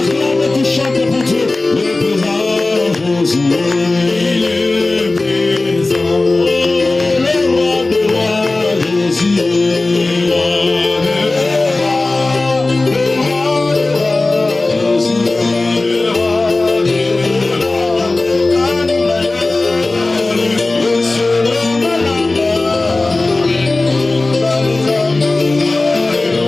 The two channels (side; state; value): right; quieter; 3.2 dB